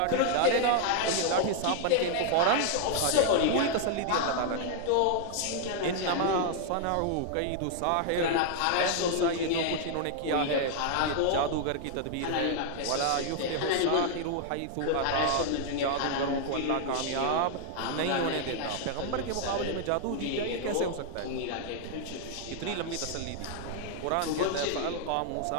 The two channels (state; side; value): different; both; correlation -0.01